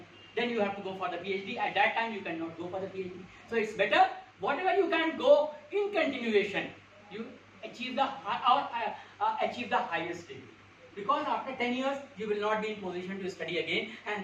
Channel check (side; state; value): both; identical; correlation 1.00